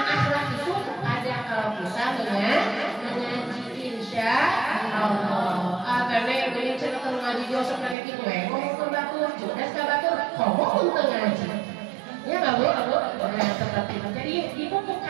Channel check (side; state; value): left; drops out; at 8.0 s